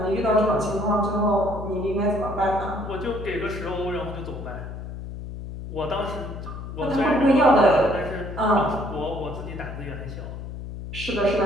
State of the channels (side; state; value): left; noise; hum, 9 dB below the sound